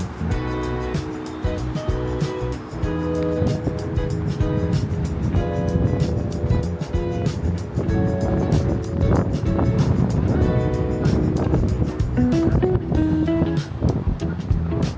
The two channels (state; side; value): identical; both; correlation 1.00